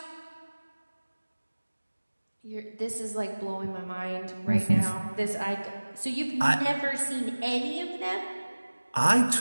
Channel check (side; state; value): both; inverted; correlation -1.00